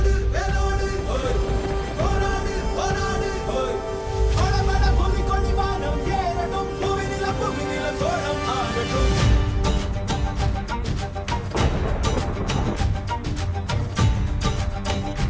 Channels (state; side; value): identical; both; correlation 1.00